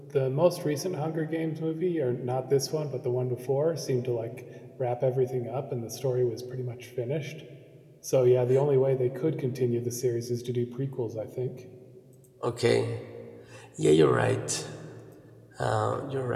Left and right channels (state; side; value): identical; both; correlation 1.00